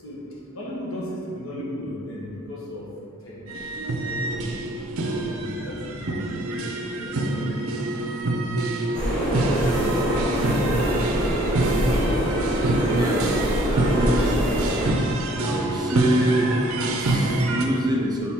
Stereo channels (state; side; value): normal; both; correlation 0.61